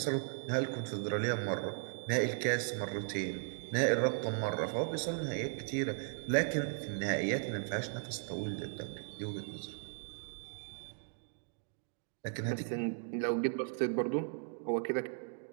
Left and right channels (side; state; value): left; silent; 53 dB below the other